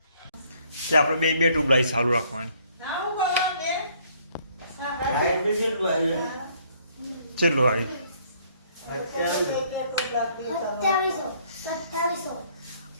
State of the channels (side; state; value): both; inverted; correlation -0.63